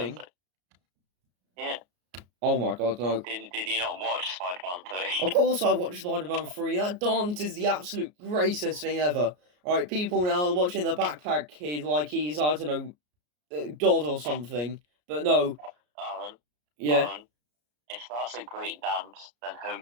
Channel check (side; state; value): left; late; 33 ms